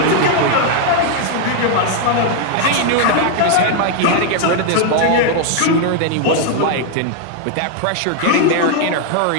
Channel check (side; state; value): both; different; correlation 0.00